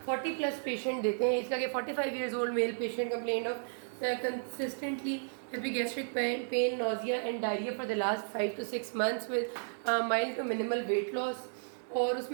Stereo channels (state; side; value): silent; left; digital silence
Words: 40+ पेशेंट देते हैं। इसका कि 45 years old male patient complain of consistently epigastric pain, nausea and diarrhea for the last 5 to 6 months with mild to minimal weight loss। और